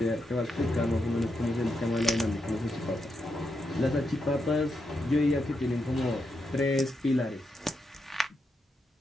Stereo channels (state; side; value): normal; both; correlation 0.83